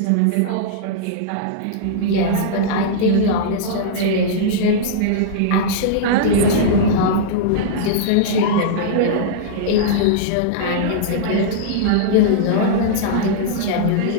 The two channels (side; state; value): both; different; correlation -0.02